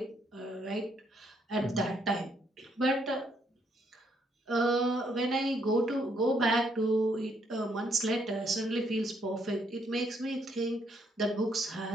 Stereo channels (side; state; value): both; normal; correlation 0.72